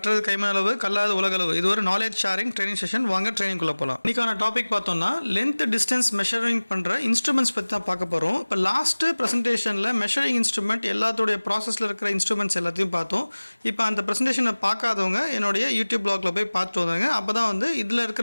கைமளவு கல்லாத உலகளவு. இது ஒரு நாலேஜ் ஷேரிங் ட்ரைனிங் செஷன். வாங்க ட்ரைனிங் குள்ள போலாம். இன்னைக்கான டாபிக் பார்த்தோம்னா லென்த் டிஸ்டன்ஸ் மெஷரிங் பண்ற இன்ஸ்ட்ருமெண்ட்ஸ் பத்தி தான் பார்க்க போறோம். இப்போ லாஸ்ட் பிரசன்டேஷன்ல மெஷரிங் இன்ஸ்ட்ருமெண்ட் எல்லாத்தோட ப்ராசஸ்ல இருக்கிற இன்ஸ்ட்ருமெண்ட்ஸ் எல்லாத்தையும் பார்த்தோம். இப்போ அந்த பிரசன்டேஷனை பார்க்காதவங்க என்னுடைய யூடியூப் பிளாக்ல போய் பார்த்துட்டு வந்தாங்க. அப்பதான் வந்து இதுல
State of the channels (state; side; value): inverted; both; correlation -1.00